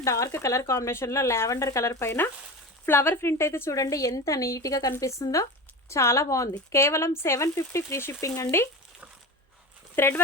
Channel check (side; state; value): both; normal; correlation 0.29